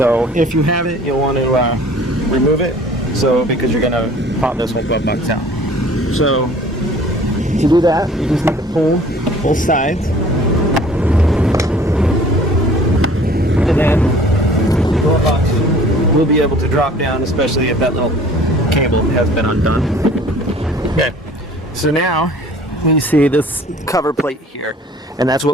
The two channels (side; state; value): both; normal; correlation 0.50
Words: if you have it, you'll want to remove it. So, because you're gonna pop this whole glove box out. So, to do that, you just need to pull both sides, and then the glove box will be able to drop down, especially if that little cable has been undone. Okay, so now we see this cover plate here, and that's